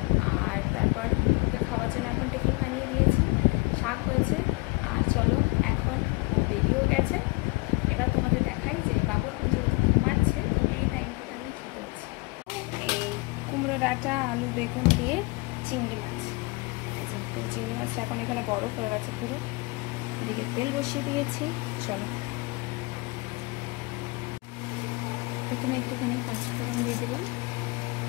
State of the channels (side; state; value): right; quieter; 26.4 dB